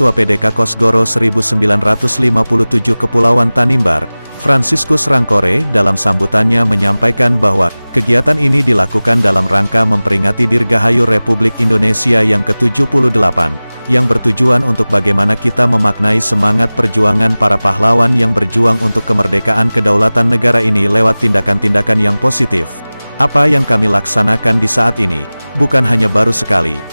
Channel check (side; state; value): both; inverted; correlation -0.99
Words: PDK Kosgoro 1957 Kepulauan Tanimbar, Franciscus Rangkore dalam sambutannya menyampaikan bahwa kegiatan ini dilakukan dalam rangka memperingati Dirgahayu Republik Indonesia yang ke-78, yang bertujuan untuk bagaimana kita memaknai semangat perjuangan para pahlawan yang berjuang untuk kemerdekaan kedaulatan negara ini lewat tindakan-tindakan yang positif. Apa yang kami laksanakan di saat ini, bukan hanya baru sekali,